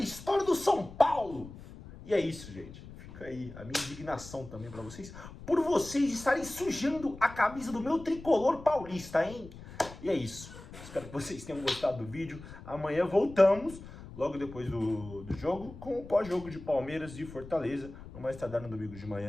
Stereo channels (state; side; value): noise; left; rumble, 15 dB below the sound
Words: do São Paulo. E é isso, gente. Fica aí a minha indignação também pra vocês, por vocês estarem sujando a camisa do meu tricolor paulista, hein? E é isso. Espero que vocês tenham gostado do vídeo. Amanhã voltamos, logo depois do jogo, com o pós-jogo de Palmeiras e Fortaleza. No mais tardar no domingo de